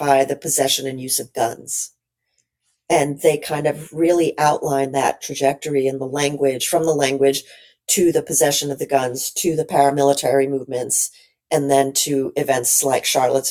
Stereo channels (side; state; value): both; identical; correlation 1.00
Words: the possession and use of guns. And they kind of really outline that trajectory in the language, from the language to the possession of the guns, to the paramilitary movements, and then to events like